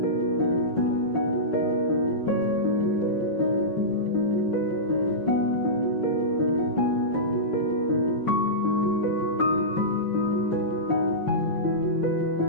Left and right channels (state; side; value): late; right; 5.5 ms